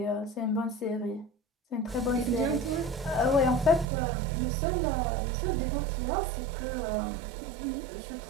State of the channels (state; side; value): drops out; left; at 3.9 s